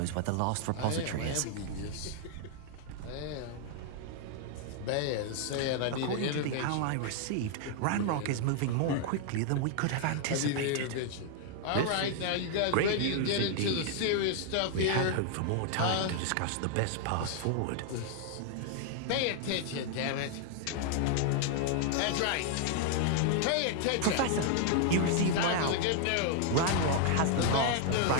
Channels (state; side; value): different; both; correlation 0.00